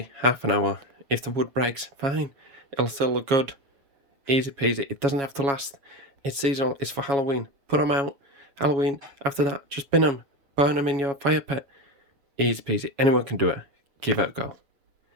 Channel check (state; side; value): late; left; 7.2 ms